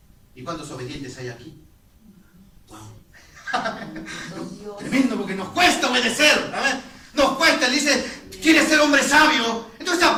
¿Y cuántos obedientes hay aquí? Wow. Tremendo, porque nos cuesta obedecer. ¿Sabes? Nos cuesta. Él dice, ¿quieres ser hombre sabio? Entonces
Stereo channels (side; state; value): both; identical; correlation 1.00